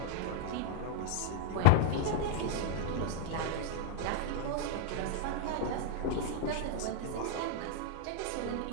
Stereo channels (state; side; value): different; both; correlation 0.00